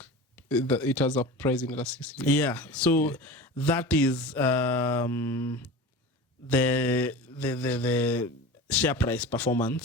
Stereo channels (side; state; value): both; normal; correlation 0.32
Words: it has a price in elasticity. Yeah. So that is the share price